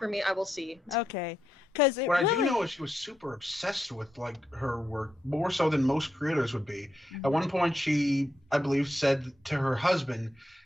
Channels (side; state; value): both; normal; correlation 0.83